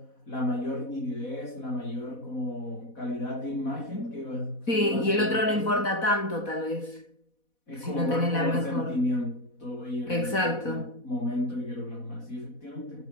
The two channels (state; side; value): late; right; 4.1 ms